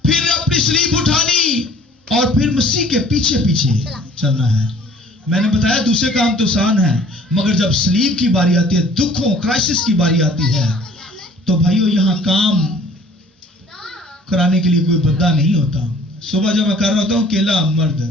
फिर अपनी स्लीब उठानी और फिर मसीह के पीछे पीछे चलना है। मैंने बताया दूसरे काम तो आसान है, मगर जब स्लीब की बारी आती है, दुखों क्राइसिस की बारी आती है, तो भाइयों यहां काम कराने के लिए कोई बंदा नहीं होता। सुबह जब मैं कर रहा होता हूं अकेला मर्द,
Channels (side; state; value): both; normal; correlation 0.52